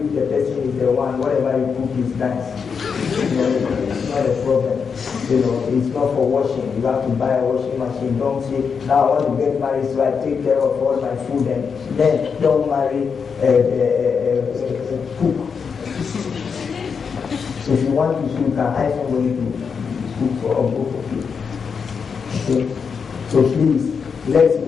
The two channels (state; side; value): quieter; right; 6.0 dB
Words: person is the one, whatever you cook is nice. It's not a problem. It's not for washing. You have to buy a washing machine. Don't say, now I want to get married so I take care of all my food, and then don't marry cook. So if you want to cook, you can hire somebody to cook for both of you. Okay? So please, let's